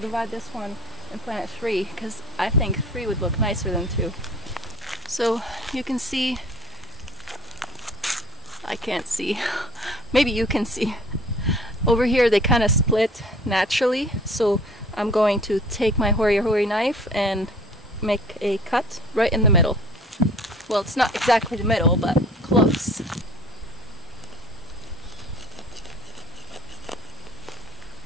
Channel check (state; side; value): normal; both; correlation 0.49